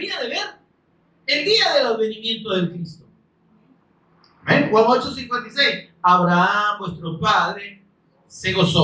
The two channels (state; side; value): identical; both; correlation 1.00